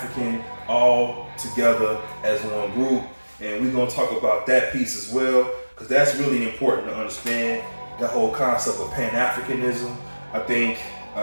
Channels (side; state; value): both; inverted; correlation -1.00